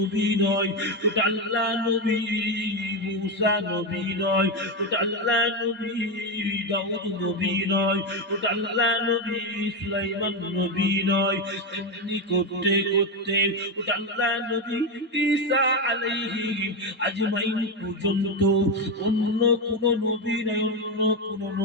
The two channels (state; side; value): normal; both; correlation 0.10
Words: নয়, ওটা আল্লাহ নবী মূসা নবী নয়, ওটা আল্লাহ নবী দাউদ নবী নয়, ওটা আল্লাহ নবী সুলাইমান নবী নয়। এমনি করতে করতে ওটা আল্লাহ নবী ঈসা আলাইহিস আজমাইন পর্যন্ত অন্য কোন নবী নয়, অন্য কোন